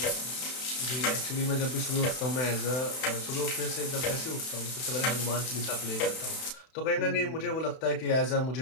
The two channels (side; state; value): right; late; 31 ms